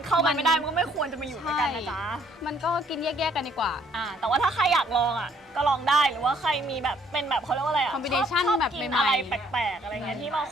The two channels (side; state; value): both; normal; correlation 0.64